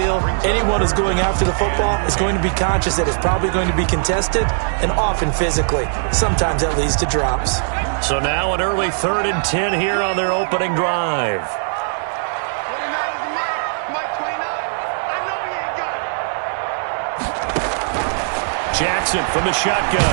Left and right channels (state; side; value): silent; left; digital silence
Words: anyone who's going after the football is going to be conscious that it's probably going to be contested and often physically. Sometimes that leads to drops. So now an early 3rd and 10 here on their opening drive. Jackson from the